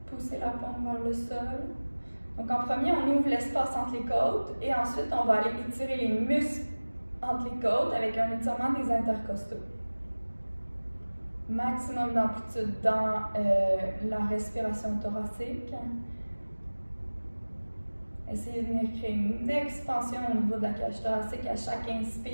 Poussez la paume vers le sol. Donc en premier, on ouvre l'espace entre les côtes et ensuite on va aller étirer les muscles entre les côtes avec un étirement des intercostaux. Maximum d'amplitude dans la respiration thoracique. Essayez de venir créer une expansion au niveau de la cage thoracique à chaque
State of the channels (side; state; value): both; inverted; correlation -1.00